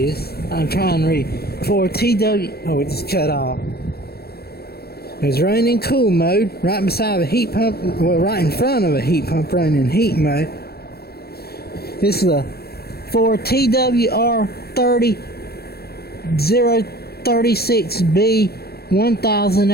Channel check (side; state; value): right; late; 0.46 ms